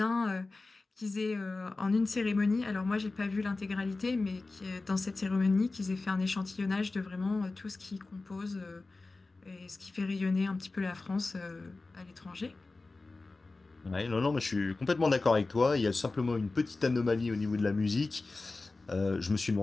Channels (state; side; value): quieter; right; 3.5 dB